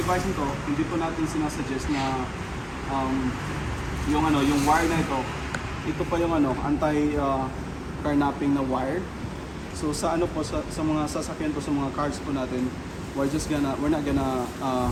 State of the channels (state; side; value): identical; both; correlation 1.00